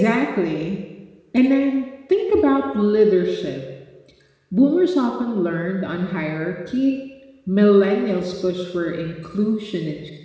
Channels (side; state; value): both; identical; correlation 1.00